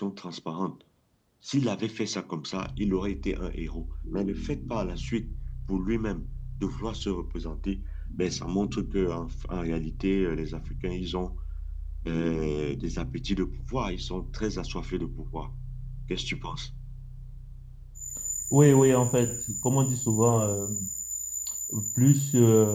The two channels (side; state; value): both; identical; correlation 1.00